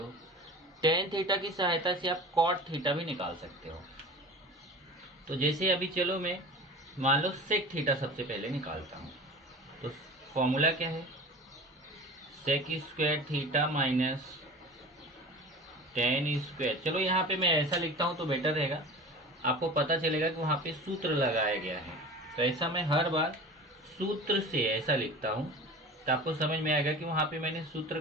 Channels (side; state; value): both; normal; correlation 0.36